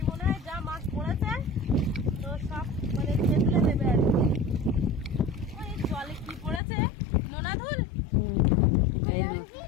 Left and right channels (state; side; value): drops out; right; at 6.6 s